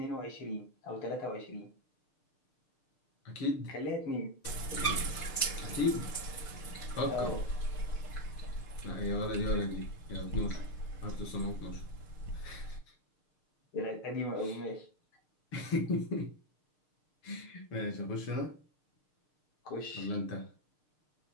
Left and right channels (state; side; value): late; right; 6.6 ms